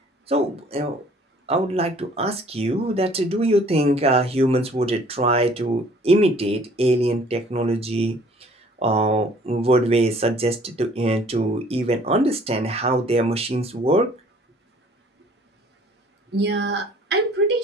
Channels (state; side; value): normal; both; correlation 0.55